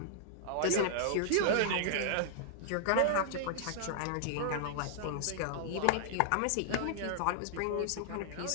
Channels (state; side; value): different; both; correlation -0.01